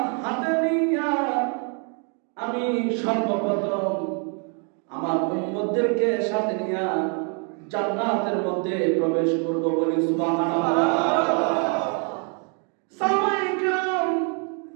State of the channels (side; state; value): left; quieter; 39.5 dB